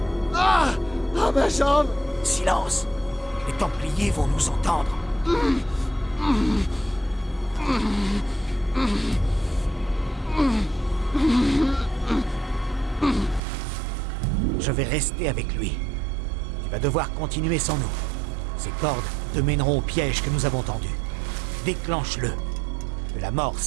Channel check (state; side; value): drops out; left; at 13.4 s